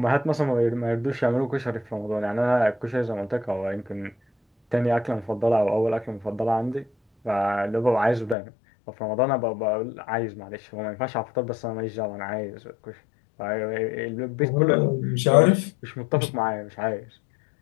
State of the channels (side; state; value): right; drops out; at 8.3 s